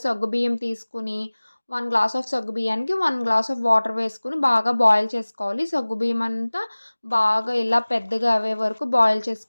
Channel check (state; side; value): inverted; both; correlation -1.00